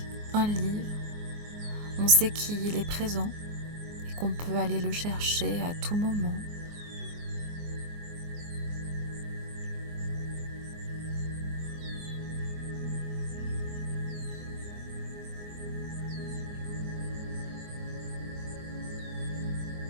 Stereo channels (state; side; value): late; left; 24 ms